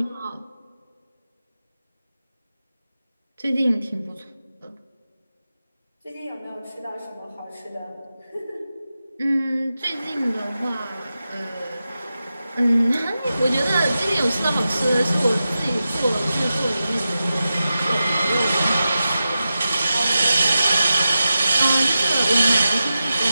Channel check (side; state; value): both; inverted; correlation -0.92